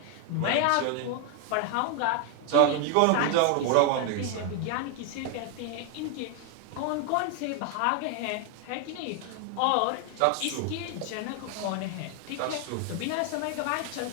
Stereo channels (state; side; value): different; both; correlation 0.00